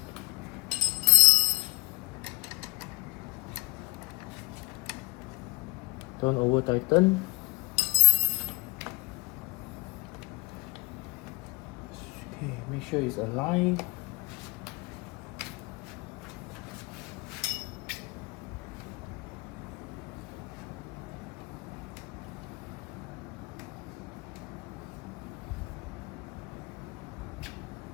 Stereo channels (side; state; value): right; quieter; 23.5 dB